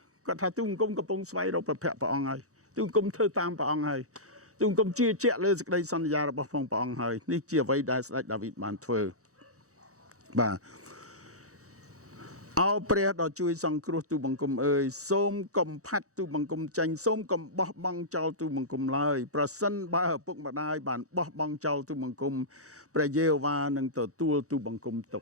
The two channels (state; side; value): late; left; 0.65 ms